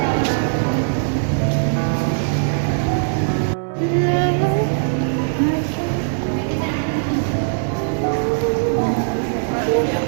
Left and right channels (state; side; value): silent; left; 66 dB below the other